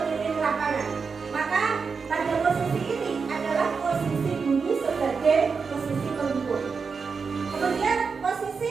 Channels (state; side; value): quieter; left; 5.3 dB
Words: lapangan. Maka pada posisi ini adalah posisi guru sebagai posisi penghukum. Kemudian posisi